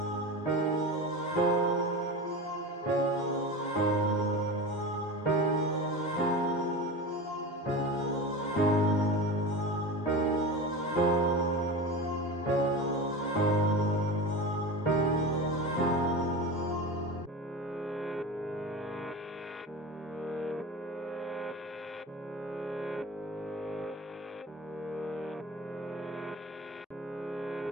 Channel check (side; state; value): both; normal; correlation 0.28